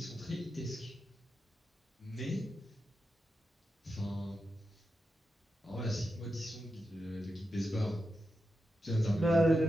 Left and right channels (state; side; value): normal; both; correlation 0.88